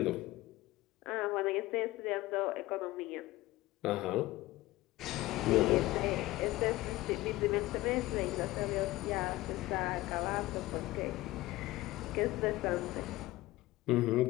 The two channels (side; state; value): right; quieter; 18.3 dB